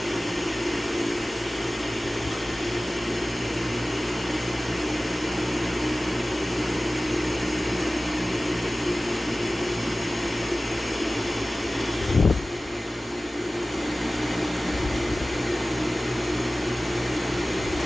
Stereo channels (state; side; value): normal; both; correlation 0.97